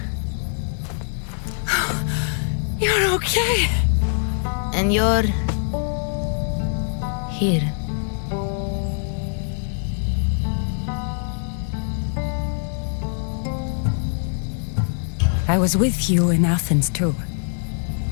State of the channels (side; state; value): right; silent; digital silence